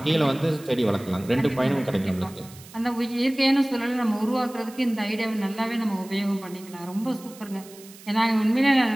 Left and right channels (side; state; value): right; noise; hiss, 20 dB below the sound